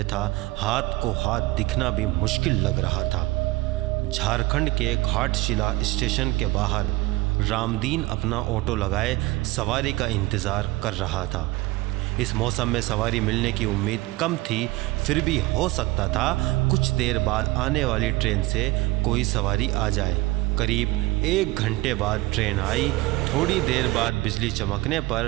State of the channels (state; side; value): quieter; left; 20.3 dB